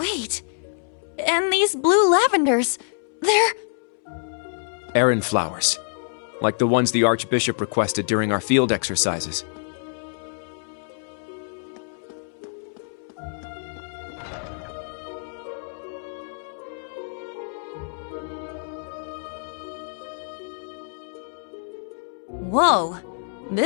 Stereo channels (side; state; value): right; silent; 61 dB below the other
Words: and these blue lavenders, they're... Errand flowers, like the ones the Archbishop requested during our field exercises. Whoa,